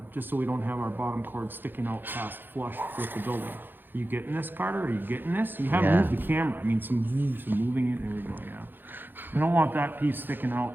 just so we don't have our bottom cord sticking out past flush with the building. Are you getting this, Carter? Are you getting this? You haven't moved the camera. I mean, some moving it. There we go, yeah. We don't want that piece sticking out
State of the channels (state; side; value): late; left; 0.095 ms